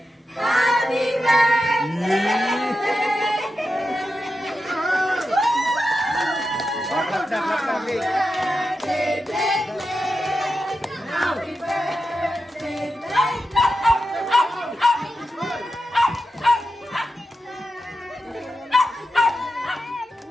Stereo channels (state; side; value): normal; both; correlation 0.89